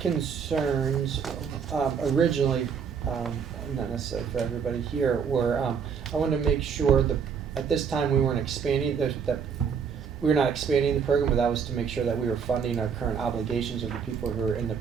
originally, not necessarily for everybody here, were I wanted to make sure that at this time we weren't expanding that we were not expanding the program, but that was to make sure that we were funding our current obligations of the people who are in the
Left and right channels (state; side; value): quieter; left; 6.7 dB